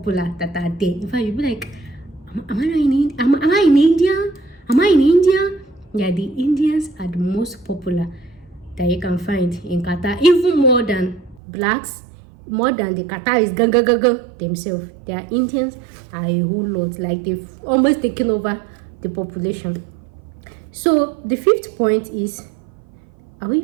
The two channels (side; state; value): left; drops out; at 11.4 s